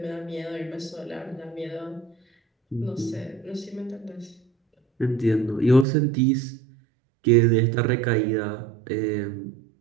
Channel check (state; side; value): drops out; left; at 5.9 s